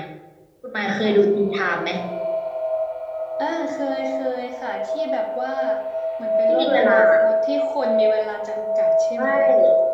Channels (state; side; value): identical; both; correlation 1.00